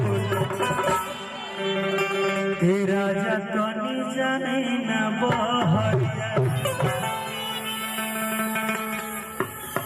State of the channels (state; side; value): identical; both; correlation 1.00